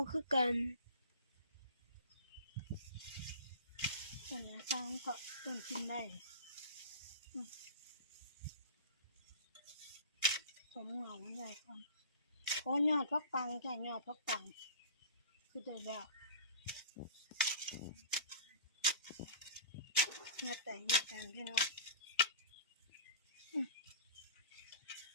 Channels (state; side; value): inverted; both; correlation -0.36